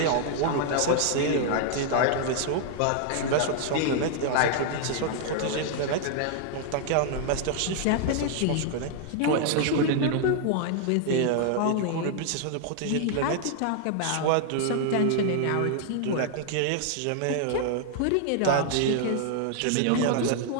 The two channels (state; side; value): different; both; correlation 0.00